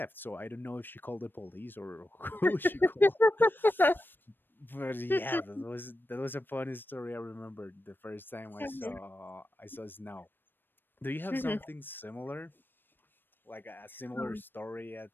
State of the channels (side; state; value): right; late; 0.095 ms